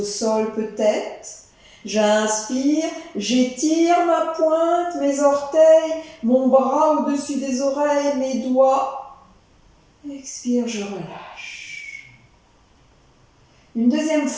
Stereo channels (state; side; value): identical; both; correlation 1.00